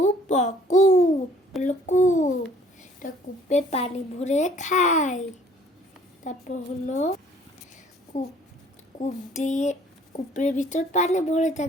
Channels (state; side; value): normal; both; correlation 0.57